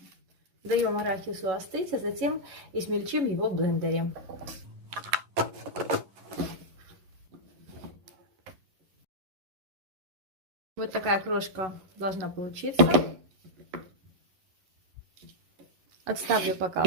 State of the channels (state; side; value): late; left; 11 ms